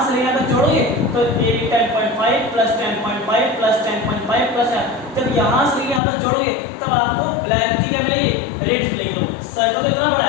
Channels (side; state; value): right; drops out; at 6.0 s